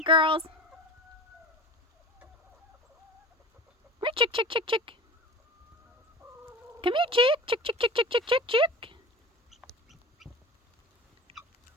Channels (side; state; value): both; normal; correlation 0.34